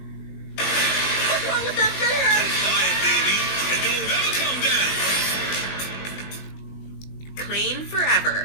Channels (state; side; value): late; right; 20 ms